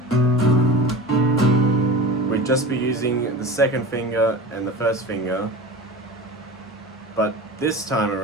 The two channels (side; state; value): both; normal; correlation 0.33